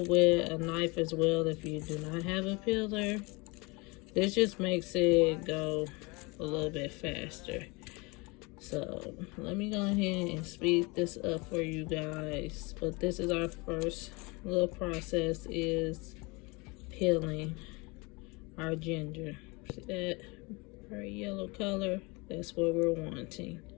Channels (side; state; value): right; quieter; 26.8 dB